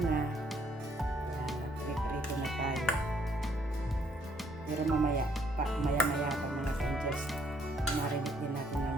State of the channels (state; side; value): normal; both; correlation 0.67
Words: Ayan, nag-prepare na tayo. Pero maya pa mga ka-angels, marinate din natin ng